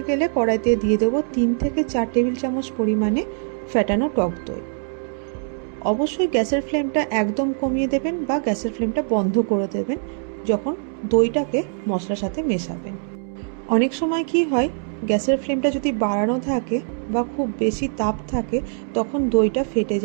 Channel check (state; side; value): silent; left; 61 dB below the other